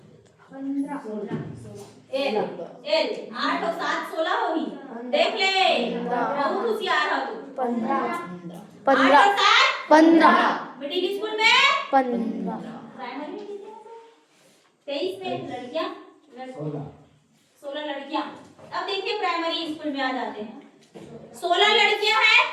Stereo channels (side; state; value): both; identical; correlation 1.00